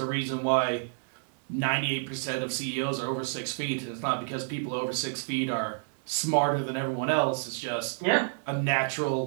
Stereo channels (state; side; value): silent; left; 58 dB below the other